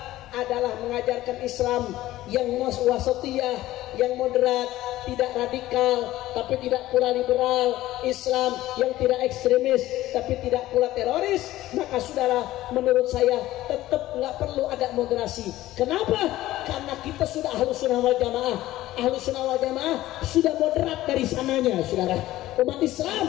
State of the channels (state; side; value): quieter; right; 15.6 dB